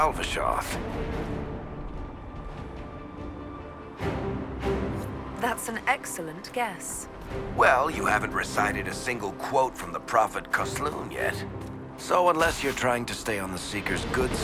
That's an excellent guess. Well, you haven't recited a single quote from the Prophet Kosloon yet. So unless you're trying to stay on the Seeker's good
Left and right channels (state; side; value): identical; both; correlation 1.00